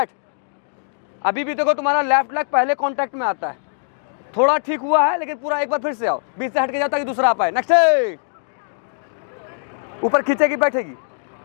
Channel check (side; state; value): right; silent; digital silence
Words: अभी भी देखो तुम्हारा लेफ्ट लेग पहले कांटेक्ट में आता है, थोड़ा ठीक हुआ है, लेकिन पूरा एक बार फिर से आओ, बीच से हट के जाओ ताकि दूसरा आ पाए। नेक्स्ट, ऊपर खींचेगी बैठेगी।